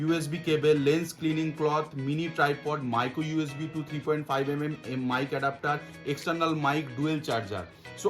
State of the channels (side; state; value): both; identical; correlation 1.00